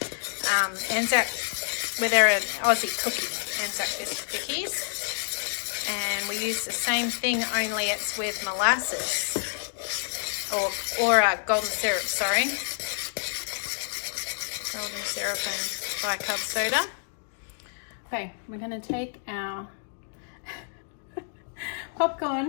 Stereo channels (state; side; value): silent; right; digital silence